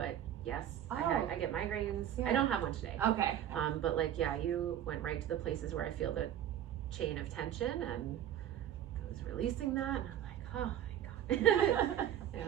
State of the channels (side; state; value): left; quieter; 10.9 dB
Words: yes, I get migraines. I don't have one today. Okay. But like, yeah, you went right to the places where I feel the chain of tension, and I was releasing that, and I'm like, oh my God.